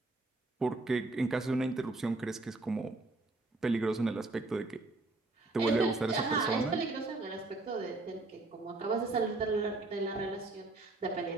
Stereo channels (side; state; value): left; quieter; 3.1 dB